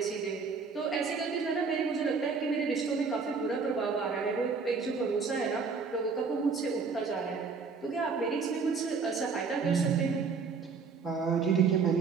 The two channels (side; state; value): left; quieter; 5.1 dB